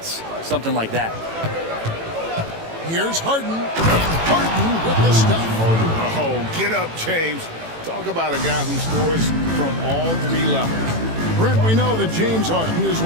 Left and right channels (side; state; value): left; late; 18 ms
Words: something like that. Here's Harden, and Harden with the stuff. Oh, get up, James. Talk about a guy who scores from all 3 levels. Brent, we know that James Harden has